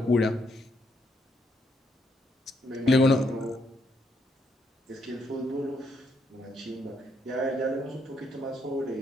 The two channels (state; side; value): normal; both; correlation 0.75